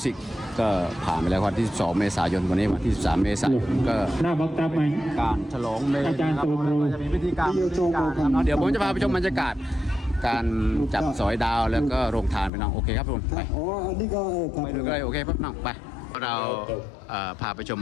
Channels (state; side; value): drops out; right; at 12.5 s